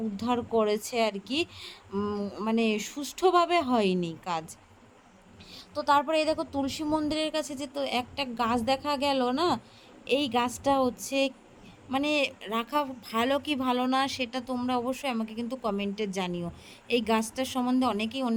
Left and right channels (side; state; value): both; identical; correlation 1.00